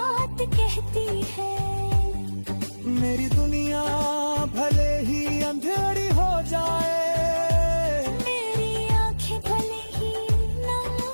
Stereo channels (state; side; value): inverted; both; correlation -1.00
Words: कहती है। मेरी दुनिया भले ही अंधेरी हो जाए, मेरी आंखें भले ही नम